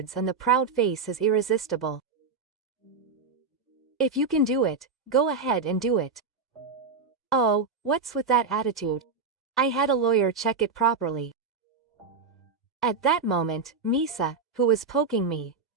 and the proud face is irresistible. If you can do it, go ahead and do it. Oh, what's with that attitude? I had a lawyer check it properly. At that moment, Misa, who was poking me,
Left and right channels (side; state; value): left; quieter; 4.8 dB